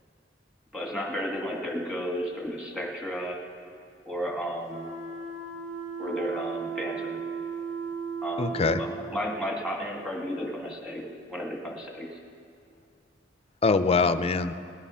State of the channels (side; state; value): both; normal; correlation 0.43